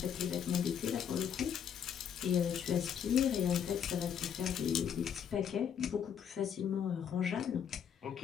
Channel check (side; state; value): right; quieter; 8.2 dB